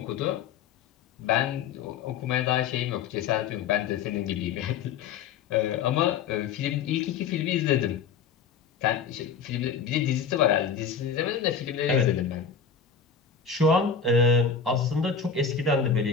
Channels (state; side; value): quieter; right; 6.5 dB